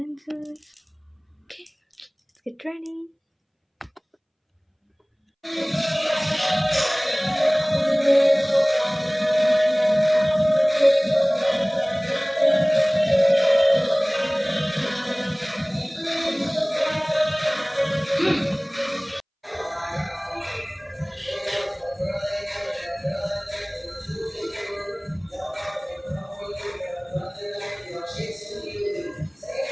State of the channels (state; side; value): identical; both; correlation 1.00